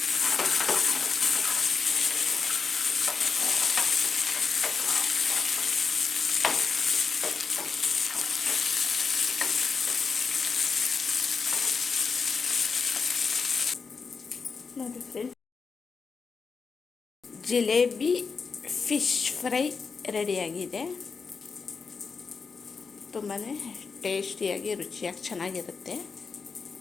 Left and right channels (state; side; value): quieter; right; 5.2 dB